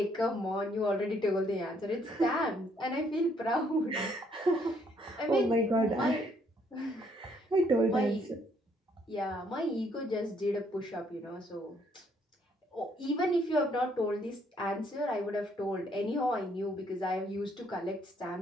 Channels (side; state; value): both; normal; correlation 0.68